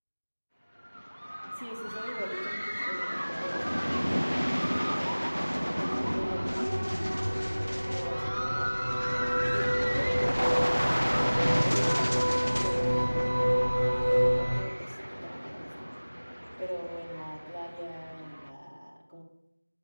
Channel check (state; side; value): inverted; both; correlation -1.00